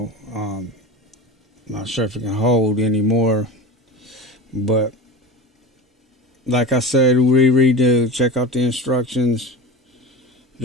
not sure if it can hold any more, but like I said, check out the instructions,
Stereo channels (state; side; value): normal; both; correlation 0.30